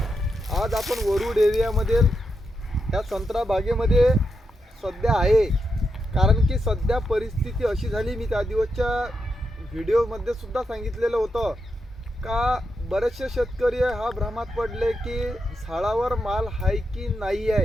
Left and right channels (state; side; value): normal; both; correlation 0.85